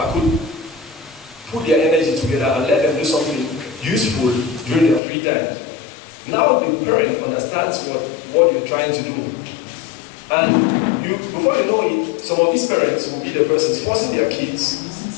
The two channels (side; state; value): right; drops out; at 5.0 s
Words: could put their energy together and let them do something useful during their free time. Now the parent understands what you're trying to do. And before you know it, some of these parents will be the persons forcing their kids